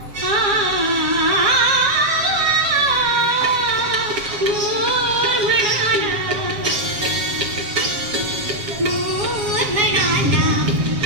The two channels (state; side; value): late; left; 7.5 ms